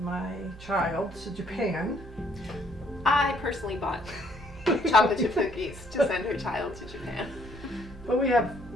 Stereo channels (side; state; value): both; normal; correlation 0.65